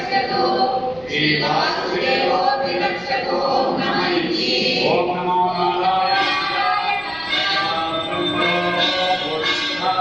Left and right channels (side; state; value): right; noise; rumble, 23 dB below the sound